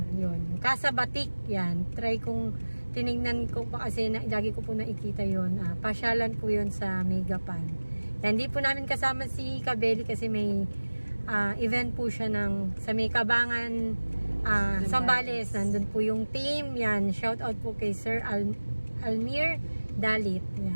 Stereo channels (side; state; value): both; inverted; correlation -1.00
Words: Yun, Casa Batik. Yan, try kong, tinignan ko pa kasi, lagi ko po nakikita yun. Pasyalan po yun sa may Gapan. Hindi po namin kasama si Kabeli kasi may event po siya sa may Kabangan, Zambales. Nandun po yung team. Yan, shout out po kay Sir Almir Dalit.